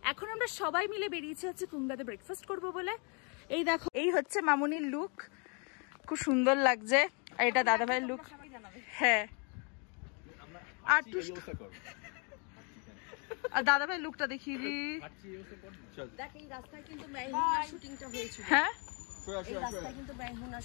এখন আমরা সবাই মিলে বেরিয়েছি হচ্ছে কুঙ্গাতে ব্রেকফাস্ট করব বলে। এই দেখো, এই হচ্ছে মামুনির লুক, খুব সুন্দর লাগছে। আর এটা দাদা ভাইয়ের লুক। হ্যাঁ, আর দাদা ভাই লুকটা দেখিয়ে দি। দেখ, এই রাস্তায় কিন্তু মেহমুনা শুটিংটা হয়েছিল। হ্যাঁ, এই রাস্তায় কিন্তু মেহমুনা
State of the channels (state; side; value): quieter; right; 35.2 dB